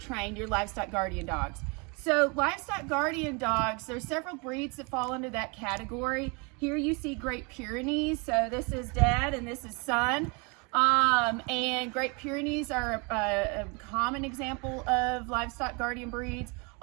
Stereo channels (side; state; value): left; quieter; 30.9 dB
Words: your livestock guardian dogs. So livestock guardian dogs, there's several breeds that fall into that category. Here you see Great Pyrenees. So this is dad and this is son. And Great Pyrenees are a common example of livestock guardian breeds.